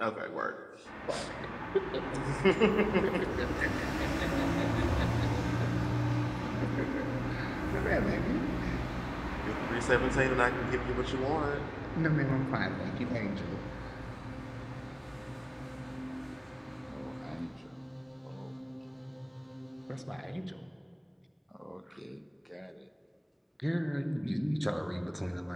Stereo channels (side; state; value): both; identical; correlation 1.00